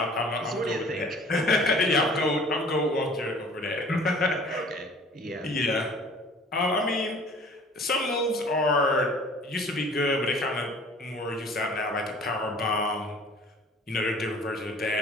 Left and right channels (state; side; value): normal; both; correlation 0.49